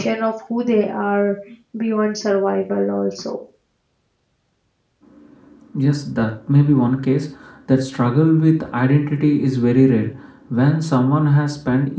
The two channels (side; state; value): both; identical; correlation 1.00